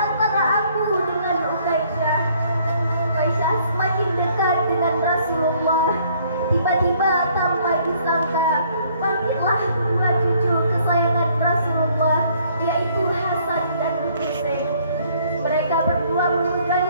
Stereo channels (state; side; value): inverted; both; correlation -0.63